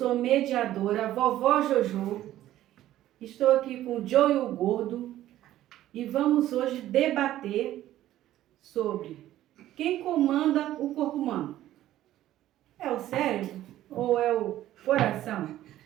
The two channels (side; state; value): left; quieter; 13.6 dB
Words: mediadora, vovó Jojo. Estou aqui com o Joe e o Gordo e vamos hoje debater sobre quem comanda o corpo humano. É o cérebro ou é o coração?